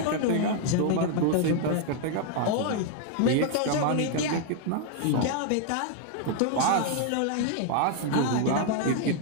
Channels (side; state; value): both; different; correlation 0.00